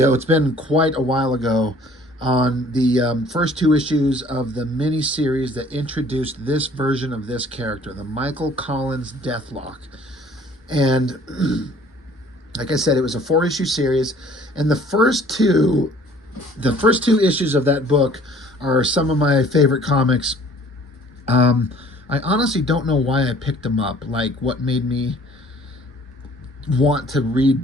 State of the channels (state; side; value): normal; both; correlation 0.54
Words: it's been quite a while ago, on the first two issues of the mini-series that introduced this version of this character, the Michael Collins Deathlock. And like I said, it was a 4-issue series, and the first two issues of that book are some of my favorite comics. I honestly don't know why I picked them up, like what made me want to read